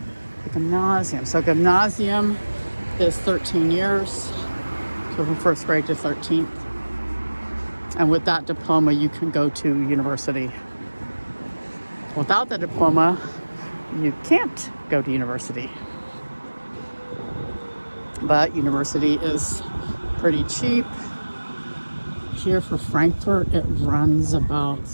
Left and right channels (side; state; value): both; inverted; correlation -1.00